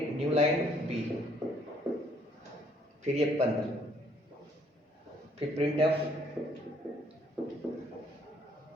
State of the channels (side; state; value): both; normal; correlation 0.65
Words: new line b, फिर ये बंद, फिर printf